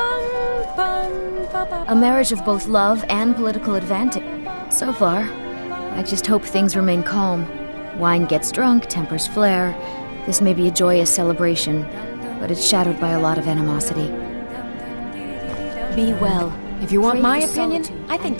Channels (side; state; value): both; inverted; correlation -1.00